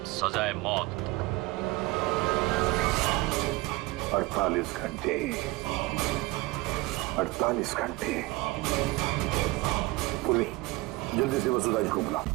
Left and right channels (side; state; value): left; quieter; 21.3 dB